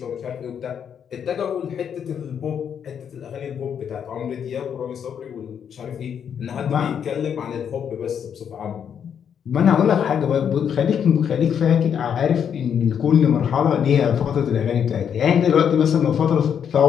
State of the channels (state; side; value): quieter; right; 8.1 dB